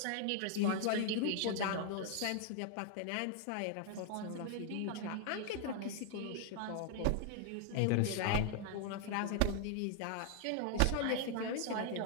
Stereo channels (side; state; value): both; different; correlation 0.00